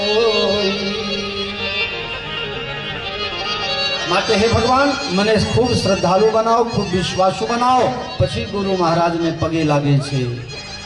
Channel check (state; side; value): identical; both; correlation 1.00